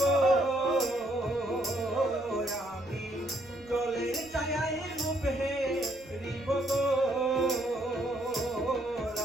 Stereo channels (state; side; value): noise; right; rumble, 25 dB below the sound